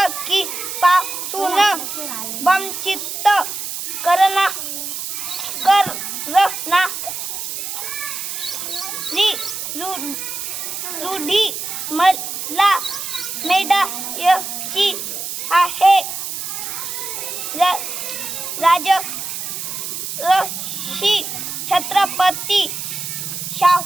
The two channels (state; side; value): noise; right; hiss, 5 dB below the sound